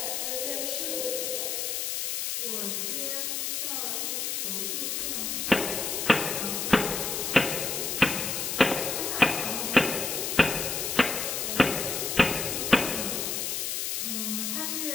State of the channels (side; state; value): left; noise; hiss, 1 dB below the sound